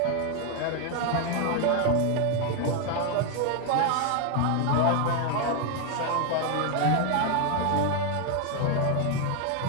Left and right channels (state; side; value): different; both; correlation 0.01